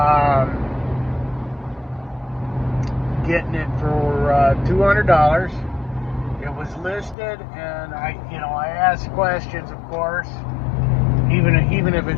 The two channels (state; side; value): drops out; right; at 7.2 s